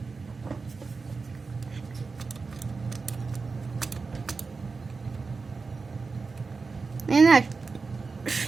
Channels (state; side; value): quieter; left; 4.4 dB